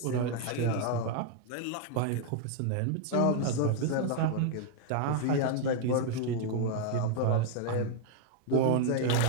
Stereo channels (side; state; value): both; different; correlation 0.00